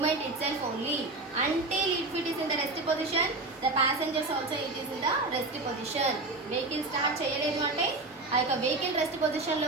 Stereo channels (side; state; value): left; quieter; 3.2 dB